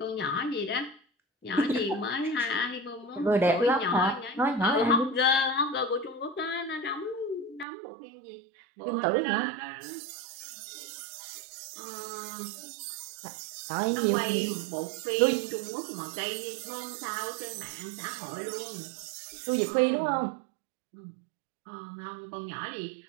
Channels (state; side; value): drops out; left; at 7.7 s